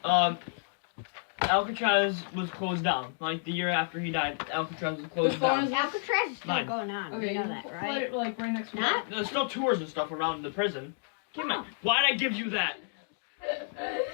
Alcatraz was closed down. Like the year after he died, Alcatraz was closed Which one down. is Alcatraz is still Mine. going on. Okay, You know you that, put right? it like right next to Not? There's still tours and stuff around the prison. Give me. Why'd I give you that?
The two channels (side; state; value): right; silent; digital silence